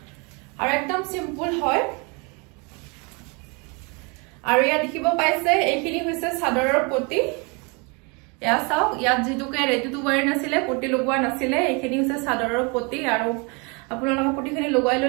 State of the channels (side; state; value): left; quieter; 31.1 dB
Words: আৰু একদম সিম্পল হয় আৰু ইয়া দেখিব পাইছে এইখিনি হৈছে চাদৰৰ পটি ইয়া চাও ইয়াত যেটুকে ৰেডি টু ওয়্যাৰ নাছিলে পটি লগোৱা নাছিলে এইখিনি হৈছে চাদৰৰ পটি আৰু আপোনালোকে পটিখিনি লগাই